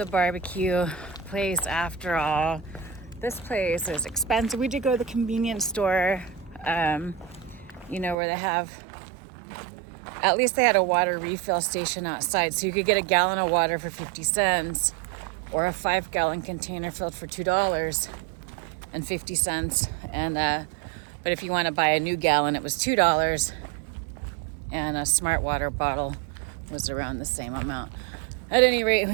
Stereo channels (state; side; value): drops out; left; at 8.2 s